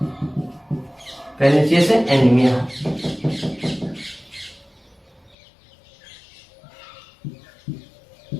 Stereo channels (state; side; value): drops out; right; at 5.4 s